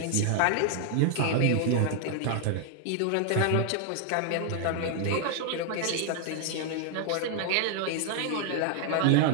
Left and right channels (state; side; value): different; both; correlation 0.00